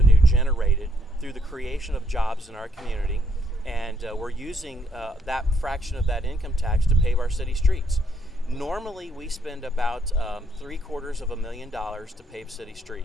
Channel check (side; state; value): both; normal; correlation 0.73